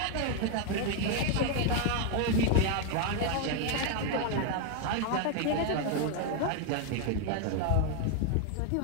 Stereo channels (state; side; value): different; both; correlation 0.00